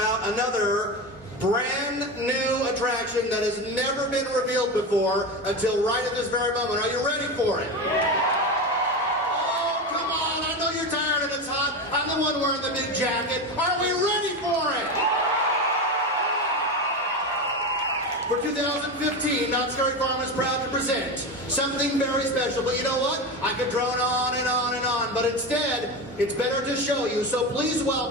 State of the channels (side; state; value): both; normal; correlation 0.21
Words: another brand new attraction that has never been revealed before until right at this very moment. Are you ready for it? Oh, come on. I I know you're tired and it's hot. I'm the one wearing the big jacket. Are we ready for it? For 2015, Not Scary Farm is proud to present something very special. But you know what? I could drone on and on and on, but instead, it's better to show you. So please